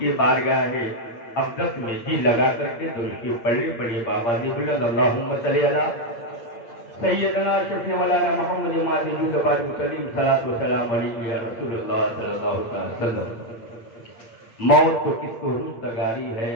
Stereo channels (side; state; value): right; late; 8.7 ms